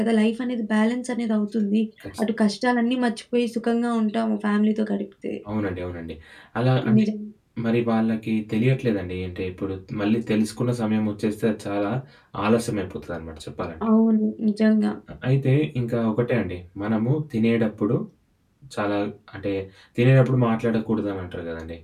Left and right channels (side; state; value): both; identical; correlation 1.00